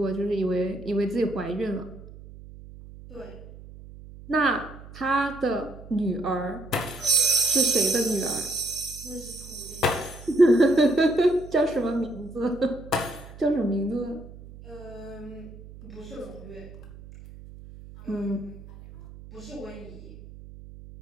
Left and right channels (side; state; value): right; noise; hum, 17 dB below the sound